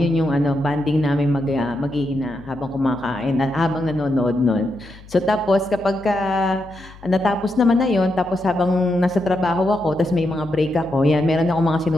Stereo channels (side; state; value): left; noise; hum, 20 dB below the sound